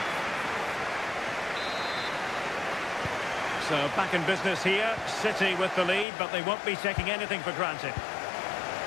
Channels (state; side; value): drops out; right; at 6.1 s